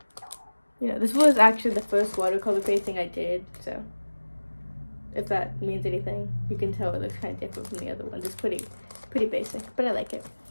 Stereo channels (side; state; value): both; inverted; correlation -1.00